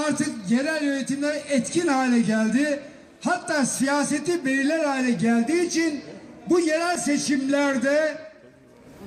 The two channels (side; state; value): both; identical; correlation 1.00